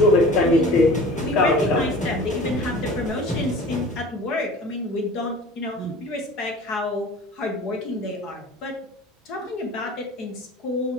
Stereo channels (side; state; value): both; normal; correlation 0.41